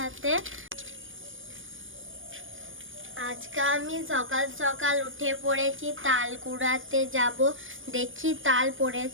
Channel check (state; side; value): late; left; 0.58 ms